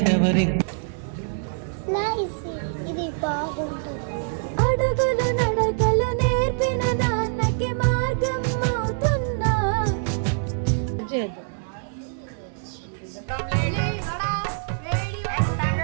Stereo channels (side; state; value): left; silent; digital silence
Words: ఇది బాగుంటుంది. అడుగులు నడకలు నేర్పిన నాన్నకి మార్గం అవుతున్నా.